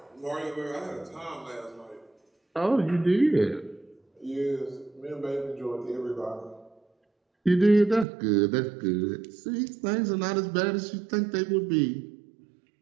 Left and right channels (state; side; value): drops out; left; at 8.1 s